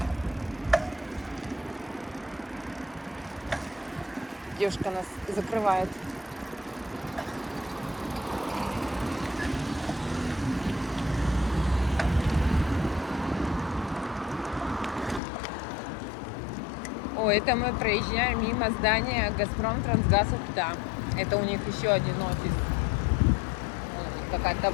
Девушка нас закрывает. О, это мы проезжаем мимо здания Газпром Трансгаз Ухта. Это у них еще один офис. Вот какая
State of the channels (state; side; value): drops out; right; at 15.2 s